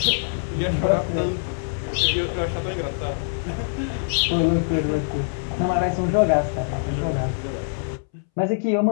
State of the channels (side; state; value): right; silent; 63 dB below the other